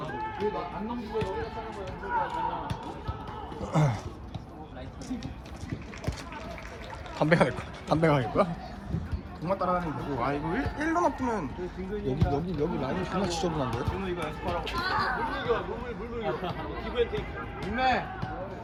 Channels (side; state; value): both; identical; correlation 1.00